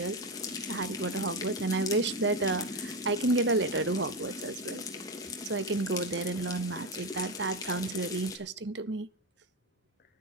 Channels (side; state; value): both; normal; correlation 0.14